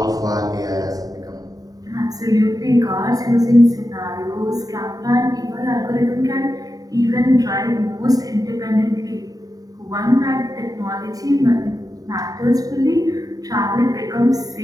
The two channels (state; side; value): late; left; 0.18 ms